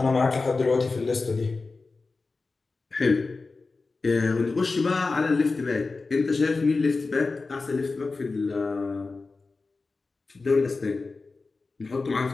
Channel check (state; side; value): quieter; right; 3.9 dB